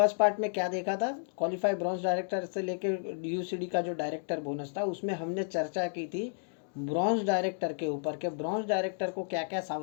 पार्ट में क्या देखा था, क्वालिफाई ब्रॉन्ज डायरेक्टर से लेकर यूसीडी का जो डायरेक्टर बोनस था उसमें हमने चर्चा की थी ब्रॉन्ज डायरेक्टर के ऊपर के ब्रॉन्ज डायरेक्टर को क्या क्या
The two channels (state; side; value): silent; right; digital silence